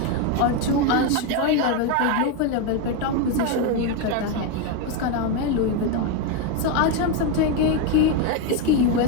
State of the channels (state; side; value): different; both; correlation 0.02